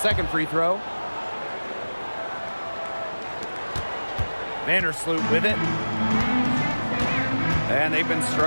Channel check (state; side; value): inverted; both; correlation -1.00